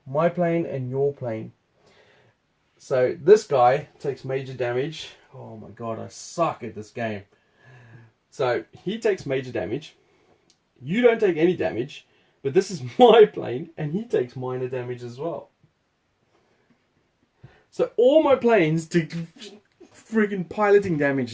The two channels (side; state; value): both; identical; correlation 1.00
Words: my plane and your plane. So this guy takes major damage. Oh my god, I suck at this game. So he takes major damage. You don't take any damage, but this is my plane and he takes minor damage as well. So all my planes take friggin' piloting damage